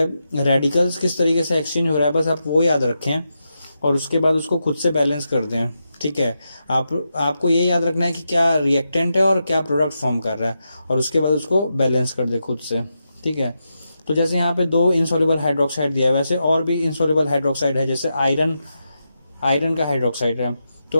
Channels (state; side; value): inverted; both; correlation -0.87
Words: रेडिकल्स किस तरीके से एक्सचेंज हो रहा है, बस आप वो याद रखें और उसके बाद उसको खुद से बैलेंस कर दें। ठीक है, आपको ये याद रखना है कि क्या रिएक्टेंट है और क्या प्रोडक्ट फॉर्म कर रहा है, और उसके बाद उसको बैलेंस कर दे खुद से। ठीक है, तो जैसे यहाँ पे 2 इनसॉल्युबल हाइड्रोक्साइड दिया है, वैसे और भी इनसॉल्युबल हाइड्रोक्साइड है, जैसे आयरन का हाइड्रोक्साइड है। तो